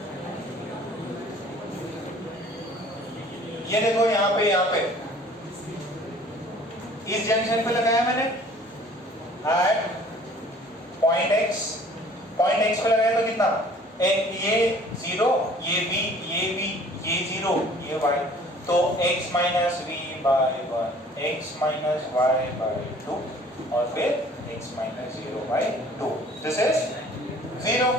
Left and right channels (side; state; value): both; normal; correlation 0.52